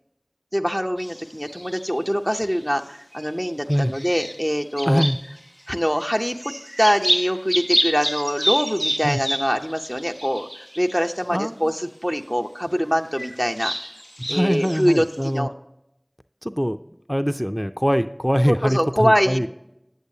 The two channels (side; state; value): both; identical; correlation 1.00